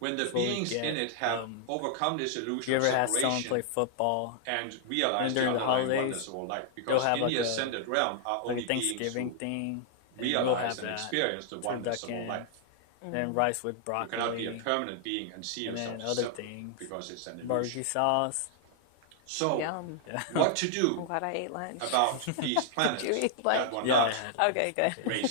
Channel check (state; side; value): different; both; correlation -0.01